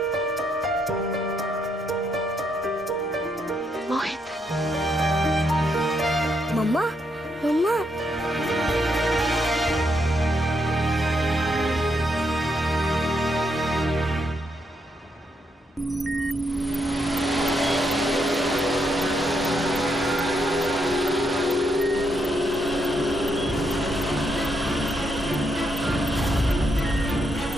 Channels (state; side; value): normal; both; correlation 0.78